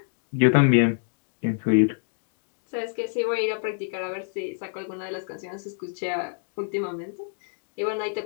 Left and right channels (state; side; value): silent; right; digital silence